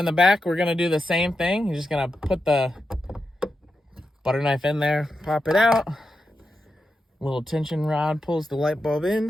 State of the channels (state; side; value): normal; both; correlation 0.88